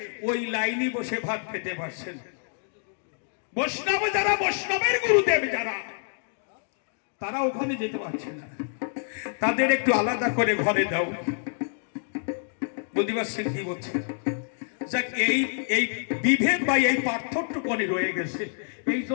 ওই লাইনে বসে ভাত খেতে পারছেন। বৈষ্ণব যারা, বৈষ্ণবের গুরুদেব যারা, তারা ওখানে যেতে পারছে না, তাদের একটু আলাদা করে ঘরে দাও। বুঝতে পারছেন কি বলছে? যাক, এই বিভেদ বা এই পার্থক্যটুকুনি রয়ে গেছে, এই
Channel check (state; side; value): silent; right; digital silence